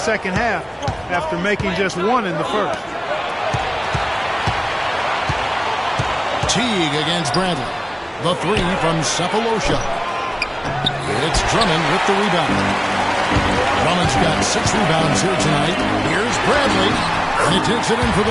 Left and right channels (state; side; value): identical; both; correlation 1.00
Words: half after making just one in the first. Teague against Bradley. The three from Cephalosha. It's Drummond with the rebound. Drummond's got 6 rebounds here tonight. Here's Bradley. And he takes it in for the